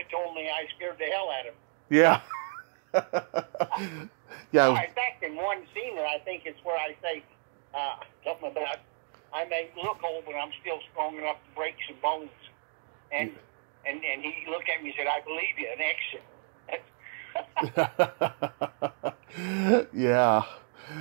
told me I scared the hell out of him. Yeah. Yeah. In fact, in one scene, and I think it's where I say something about I may look old, but I'm still strong enough to break some bones. And he looked at me and said, "I believe you." An exit. Yeah,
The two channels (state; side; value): silent; left; 56 dB below the other